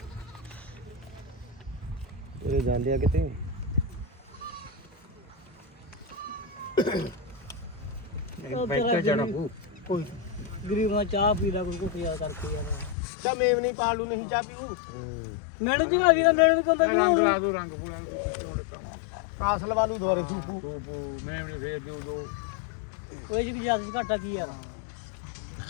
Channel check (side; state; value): right; drops out; at 13.0 s